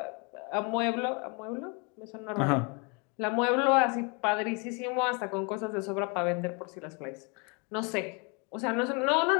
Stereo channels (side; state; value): right; quieter; 32.6 dB